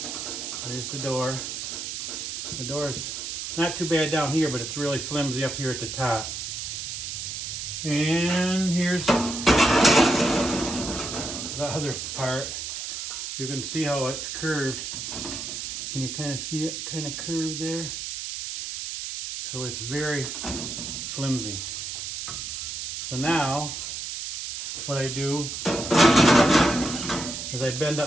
There's the door. The door's not too bad down here, but it's really flimsy up here at the top. And here's the other part. You can see how it's curved. Can you kind of see it kind of curved there? So it's very flimsy. So now what I do is I bend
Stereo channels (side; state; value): right; noise; hiss, 5 dB below the sound